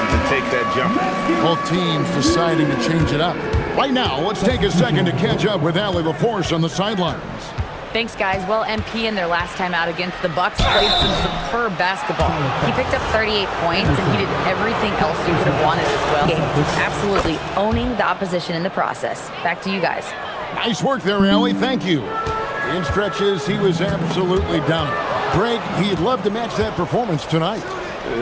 to take that jumper. Both teams deciding to change it up. Right now, let's take a second to catch up with Allie LaForce on the sidelines. Thanks, guys. Well, MP in their last time out against the Bucks played some superb basketball. He picked up 38 points, and he did everything else you could have wanted as well. Absolutely owning the opposition in the process. Back to you guys. Nice work there, Allie. Thank you. In stretches, he was absolutely dominant. Greg, he'd love to match that performance tonight.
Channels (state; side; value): identical; both; correlation 1.00